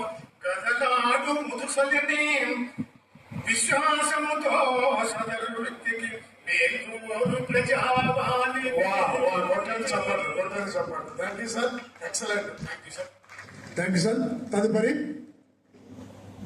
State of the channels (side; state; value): both; identical; correlation 1.00